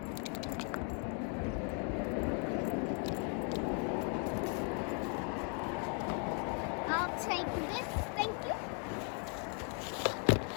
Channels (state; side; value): quieter; right; 39.9 dB